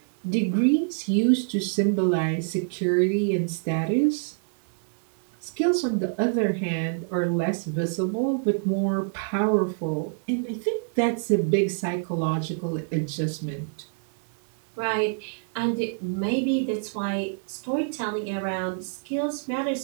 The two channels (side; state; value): left; silent; digital silence